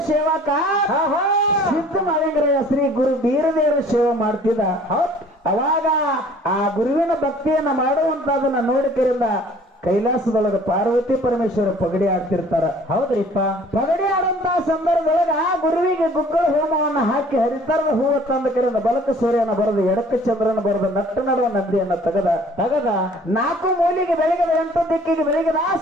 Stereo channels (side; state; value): both; normal; correlation 0.53